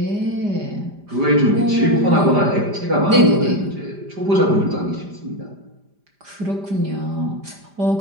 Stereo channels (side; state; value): left; late; 5.0 ms